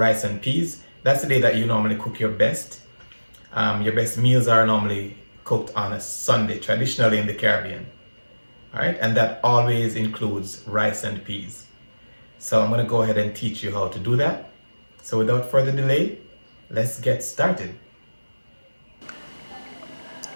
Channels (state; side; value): inverted; both; correlation -1.00